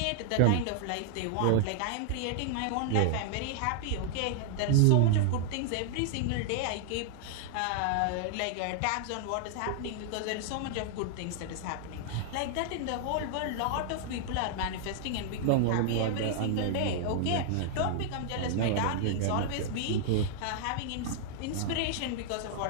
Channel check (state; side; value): different; both; correlation -0.01